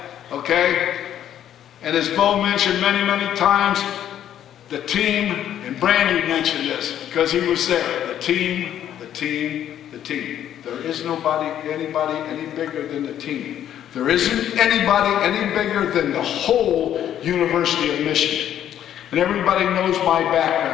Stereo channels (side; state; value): right; quieter; 10.7 dB